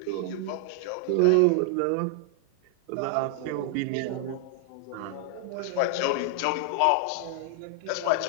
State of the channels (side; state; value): both; different; correlation 0.00